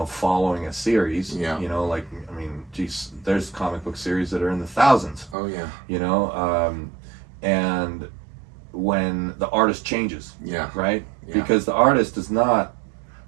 following a series. Yeah. You know, like, I mean, geez, there's comic book series that are in the thousands. Oh yeah. You know, and when the artist changes, Yeah. right? Yeah. Because the artist is not.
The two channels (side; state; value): left; drops out; at 5.4 s